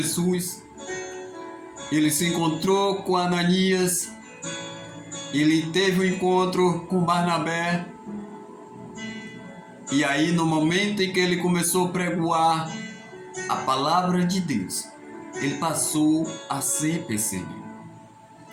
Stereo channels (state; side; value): identical; both; correlation 1.00